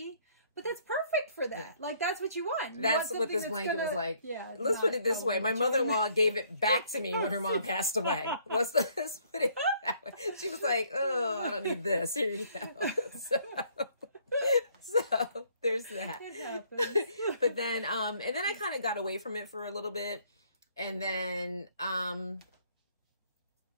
But that's perfect for that. Yeah. Like, that's what you want. That's what this blanket was like. Yeah. Let's put it this way. My mother-in-law gave it back to me when her mom passed away. Let's put it that way. She was like, oh, I don't need this. Here you go. So there's that. It happens. But then, and then I kind of got away from it for a little bit. And then, I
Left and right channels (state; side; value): inverted; both; correlation -0.64